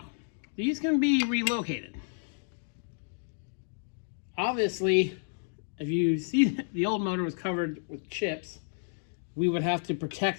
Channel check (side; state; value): right; silent; digital silence